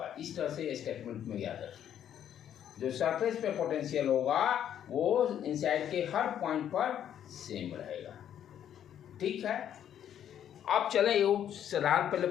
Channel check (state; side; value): quieter; right; 10.0 dB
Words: इस तरह से स्टेटमेंट में याद रखें, जो सरफेस पे पोटेंशियल होगा वो इनसाइड के हर पॉइंट पर सेम रहेगा। ठीक है, अब चले ये साधारण पहले